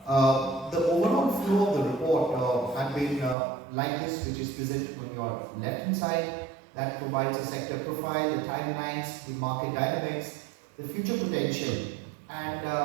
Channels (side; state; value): left; drops out; at 3.4 s